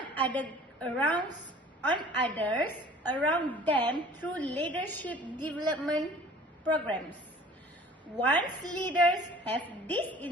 others around them through leadership development programs. Once leaders have this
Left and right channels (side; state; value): both; normal; correlation 0.49